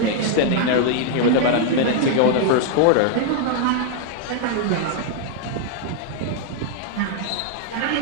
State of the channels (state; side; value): different; both; correlation 0.00